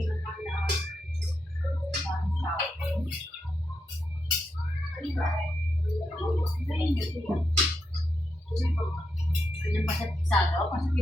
Yung pasat pisado, pasat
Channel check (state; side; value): normal; both; correlation 0.84